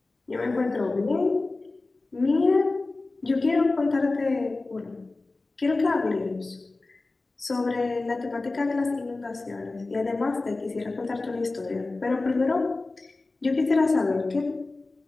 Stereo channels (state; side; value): quieter; right; 3.3 dB